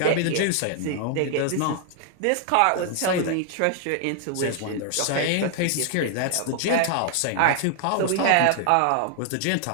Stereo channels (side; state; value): both; different; correlation 0.00